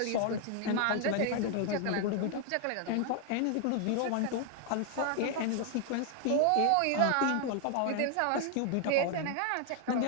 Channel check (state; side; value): different; both; correlation 0.00